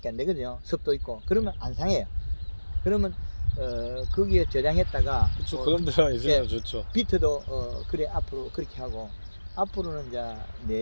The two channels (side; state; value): both; inverted; correlation -1.00